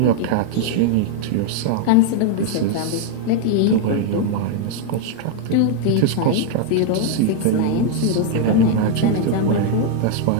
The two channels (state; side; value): different; both; correlation 0.00